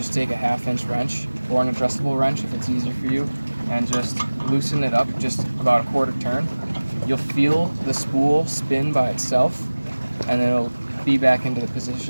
take a 1/2-inch wrench or an adjustable wrench if it's easier for you, and just loosen it up just about a 1/4 turn. You'll feel the spool spin by itself, and it'll be back into the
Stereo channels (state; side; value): inverted; both; correlation -1.00